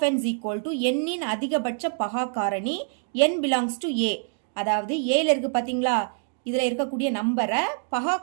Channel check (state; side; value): silent; left; 61 dB below the other